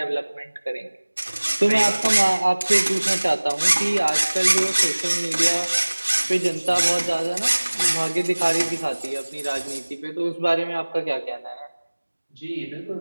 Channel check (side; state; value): both; inverted; correlation -1.00